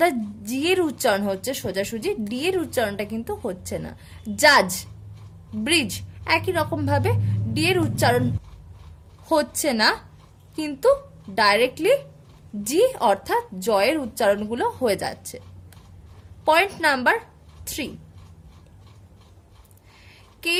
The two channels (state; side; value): identical; both; correlation 1.00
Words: জি এর উচ্চারণ হচ্ছে সোজাসুজি, ডি এর উচ্চারণটা কিন্তু হচ্ছে না। জাজ, ব্রিজ, একই রকম ভাবে ডি এর উচ্চারণ হচ্ছে না, কিন্তু ডাইরেক্টলি জি অর্থাৎ জয়ের উচ্চারণগুলো হয়ে যাচ্ছে। পয়েন্ট নাম্বার 3,